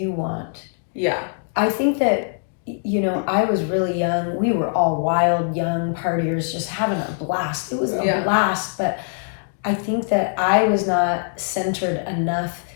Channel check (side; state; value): right; silent; 61 dB below the other